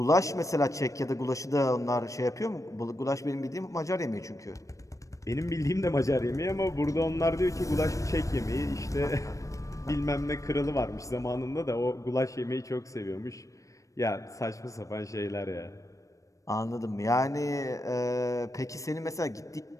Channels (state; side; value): late; right; 0.16 ms